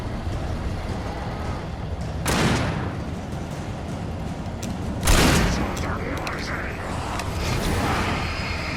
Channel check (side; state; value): both; identical; correlation 1.00